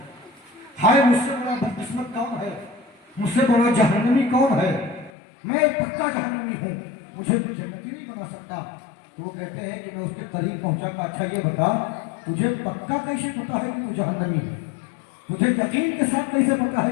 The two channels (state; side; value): drops out; right; at 5.1 s